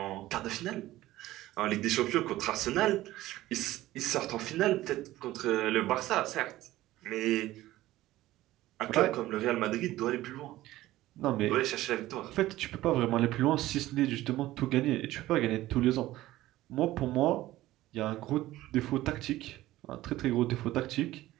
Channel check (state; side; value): quieter; left; 16.0 dB